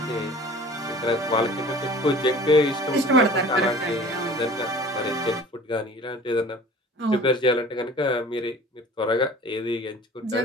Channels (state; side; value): normal; both; correlation 0.45